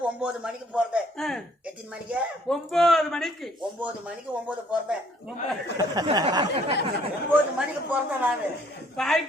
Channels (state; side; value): normal; both; correlation 0.62